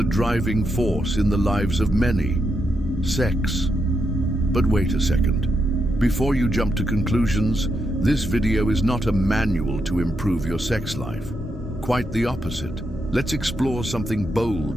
driving force in the lives of many: sex. But wait a second. Before you jump to conclusions, this video is not a manual to improve your sex life. Quite the opposite. Let's explore something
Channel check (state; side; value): normal; both; correlation 0.82